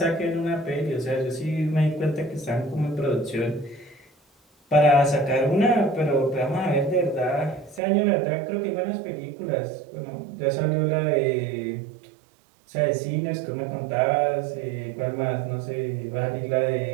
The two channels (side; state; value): left; drops out; at 7.8 s